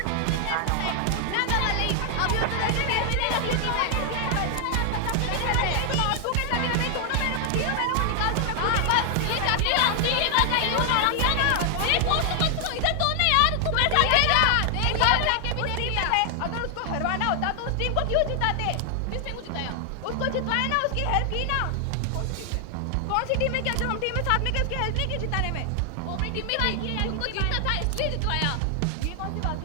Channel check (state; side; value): different; both; correlation 0.00